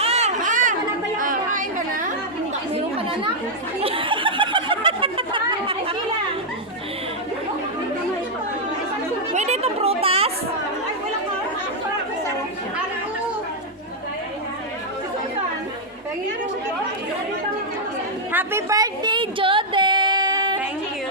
Kain ka na? Meron ka na na? Pwede itong prutas? Happy birthday, Joden! thank you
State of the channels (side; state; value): both; normal; correlation -0.04